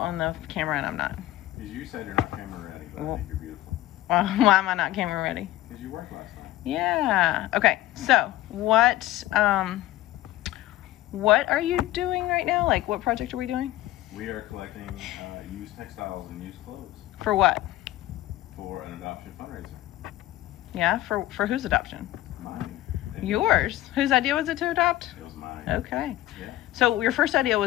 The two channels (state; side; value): quieter; right; 15.5 dB